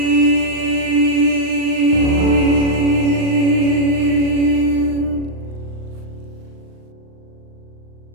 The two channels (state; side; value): late; left; 39 ms